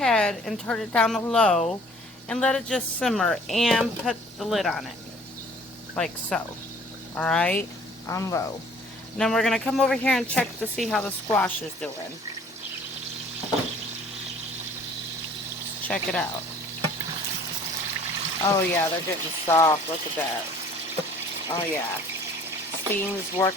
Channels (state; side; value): normal; both; correlation 0.53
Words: and turn it down to low and let it just simmer and put the lid on it. Like so. Alright? On low. And then we're going to come over here and check to see how the squash is doing. Let's check it out. Oh yeah, they're getting soft. Look at that. Oh yeah. Steam's